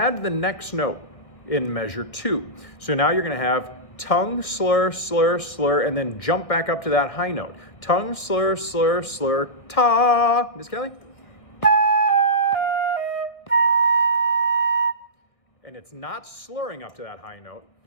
the next note in measure 2. So now you're going to have tongue, slur, slur, slur, and then jump back up to that high note. Tongue, slur, slur, slur, ta. Miss Kelly? And it's not slurring up to that high note.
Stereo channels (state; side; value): late; right; 1.6 ms